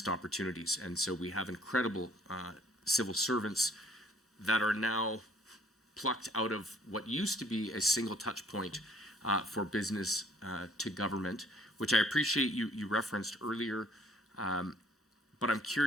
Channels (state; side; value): normal; both; correlation 0.60